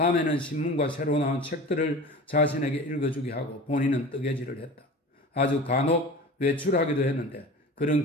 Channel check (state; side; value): normal; both; correlation 0.36